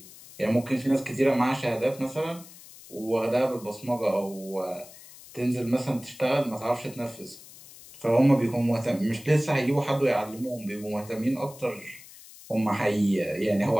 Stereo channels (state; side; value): noise; left; hiss, 19 dB below the sound